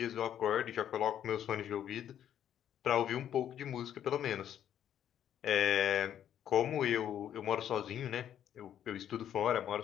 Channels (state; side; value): quieter; right; 10.2 dB